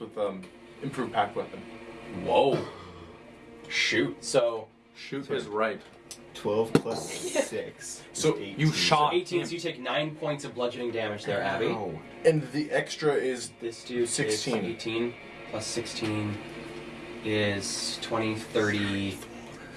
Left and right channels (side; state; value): both; identical; correlation 1.00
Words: improved pack weapon. Whoa. Shoot. So Shoot is right. 12 plus 6. So is you 18. shot 18, so you take 9 points of bludgeoning damage there, Abby. Ow. And the extra is This dude 16. is 18 plus 16 is 20, 30,